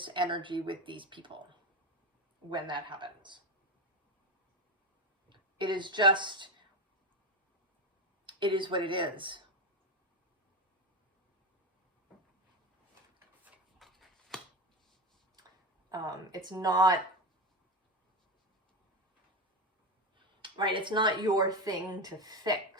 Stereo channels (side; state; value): both; normal; correlation 0.17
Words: energy with these people when that happens. It is what it is. It's not, right? It's not your thing to